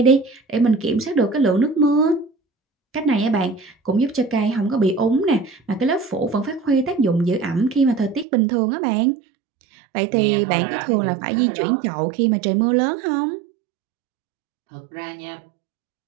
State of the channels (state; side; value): drops out; left; at 8.2 s